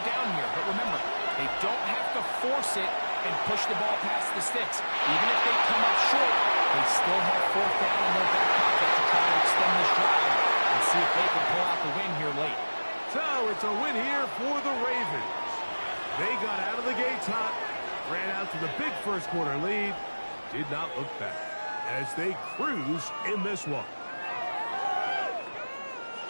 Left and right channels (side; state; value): both; inverted; correlation -1.00